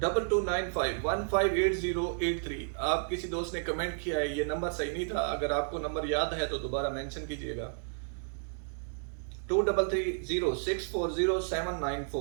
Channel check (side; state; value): left; silent; digital silence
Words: आप किसी दोस्त ने कमेंट किया है, ये नंबर सही नहीं था, अगर आपको नंबर याद है तो दोबारा मेंशन कीजिएगा।